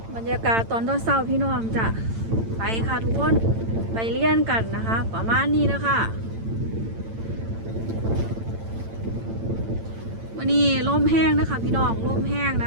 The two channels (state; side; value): late; left; 8.9 ms